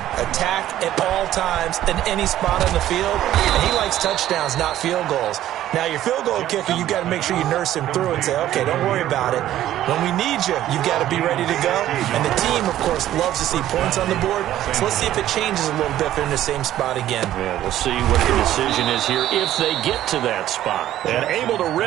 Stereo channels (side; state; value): left; quieter; 12.9 dB